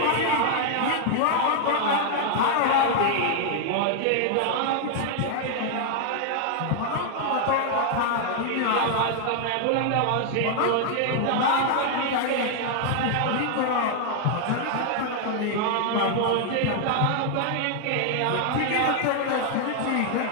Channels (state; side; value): different; both; correlation 0.00